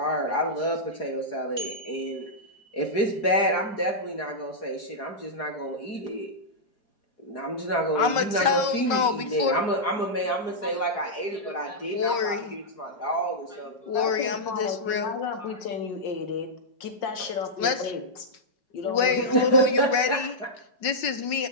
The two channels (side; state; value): right; late; 5.3 ms